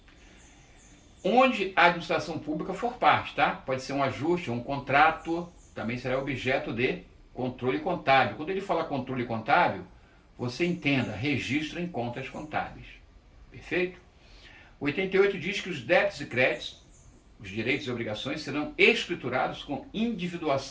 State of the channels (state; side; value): identical; both; correlation 1.00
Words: onde a administração pública for parte, tá? Pode ser um ajuste, um contrato, também será objeto de controle contábil. Quando ele fala controle contábil, você entenda, registro em contas contábeis, perfeito? O 88 diz que os débitos e créditos, os direitos e obrigações serão escriturados com